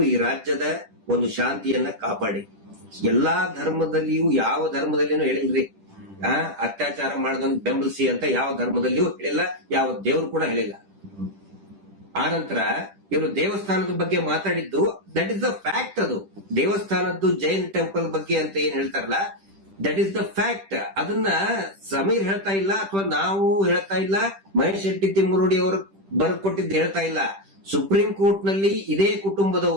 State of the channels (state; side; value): late; left; 10 ms